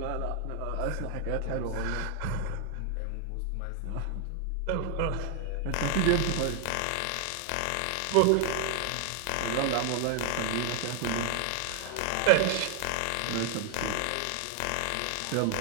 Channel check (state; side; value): different; both; correlation 0.00